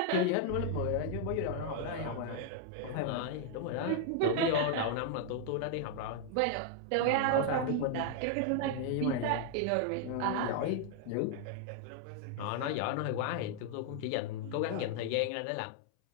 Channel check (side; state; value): both; different; correlation 0.00